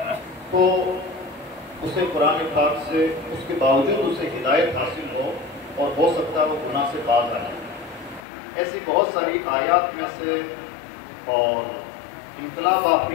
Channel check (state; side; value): drops out; right; at 8.2 s